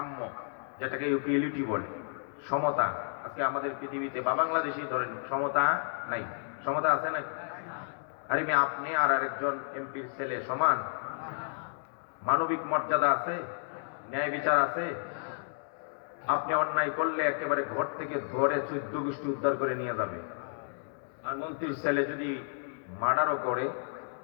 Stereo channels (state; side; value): silent; right; 57 dB below the other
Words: যেটাকে ইকুয়ালিটি বলে, সমতা। আজকে আমাদের পৃথিবীতে বা বাংলাদেশেই ধরেন সমতা নাই। সমতা আছে না? আরে মেয়ে, আপনি আর আরেকজন এমপির ছেলে সমান? মানবিক মর্যাদা আছে? ন্যায় বিচার আছে? আপনি অন্যায় করলে একেবারে ঘর থেকে ধরে 14 গোষ্ঠী উদ্ধার করে নিয়ে যাবে। আর মন্ত্রীর ছেলে যদি মার্ডারও করে,